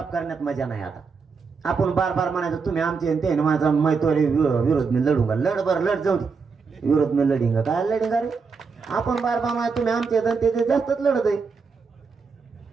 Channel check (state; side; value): quieter; left; 5.1 dB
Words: करण्यात मजा नाही. आता आपण बार बार म्हणायचं तुम्ही आमचे ते माझा मैत्री विरोध मी लढूंगा. लढ बर लढ जाऊ दे, विरोध मी लढिंगा. काय लढिंगा रे? आपण बार बार म्हणायचं तुम्ही आमचे ते जास्तच लढत आहे.